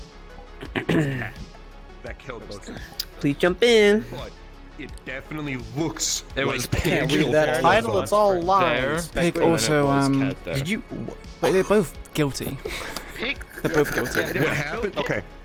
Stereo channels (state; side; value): identical; both; correlation 1.00